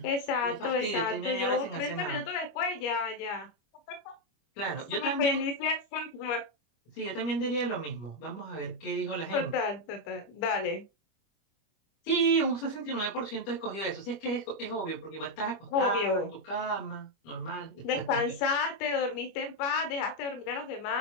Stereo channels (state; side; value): late; right; 25 ms